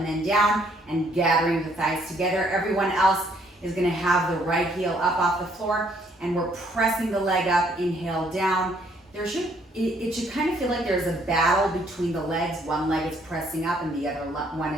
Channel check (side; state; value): both; normal; correlation 0.66